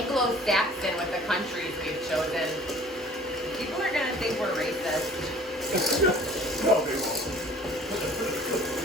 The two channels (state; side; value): normal; both; correlation 0.50